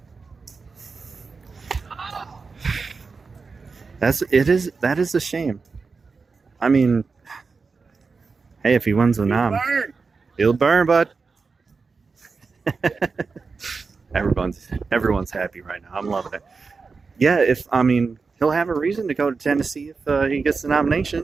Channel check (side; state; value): left; quieter; 4.6 dB